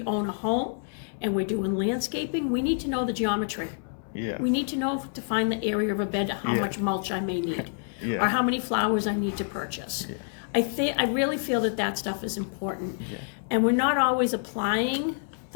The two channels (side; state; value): right; silent; 60 dB below the other